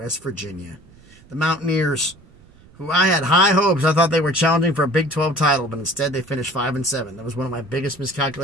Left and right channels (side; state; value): right; noise; rumble, 25 dB below the sound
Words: Virginia. The Mountaineers, who I had high hopes. I thought they were challenging for a Big 12 title, but instead they finished 5-7. That was one of my biggest